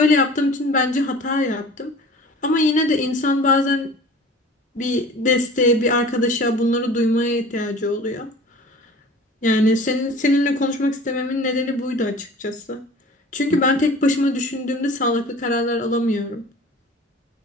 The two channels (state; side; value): normal; both; correlation 0.42